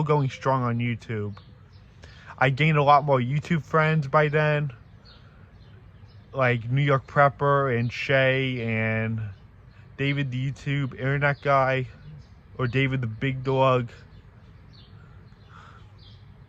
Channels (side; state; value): both; identical; correlation 1.00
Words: going strong on YouTube. I gained a lot more YouTube friends by then, like New York Prepper and Shay and David the YouTube Internet Guy, or David the Big Dog.